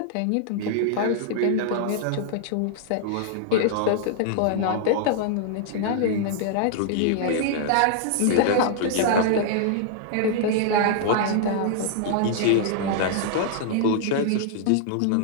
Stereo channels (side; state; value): both; different; correlation -0.01